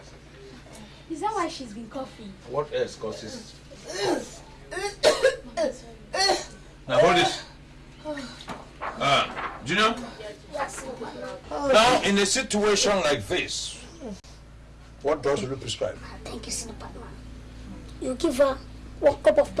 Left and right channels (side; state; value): both; identical; correlation 1.00